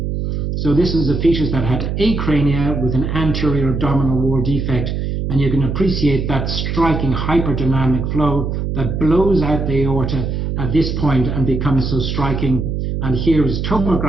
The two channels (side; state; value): right; noise; hum, 2 dB below the sound